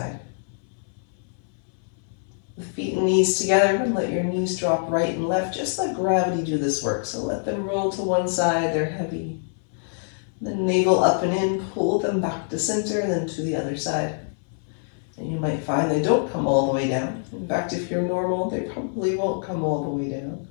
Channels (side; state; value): right; silent; 61 dB below the other